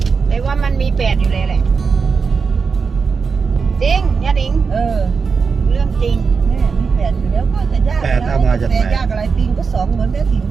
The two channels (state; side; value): quieter; left; 5.3 dB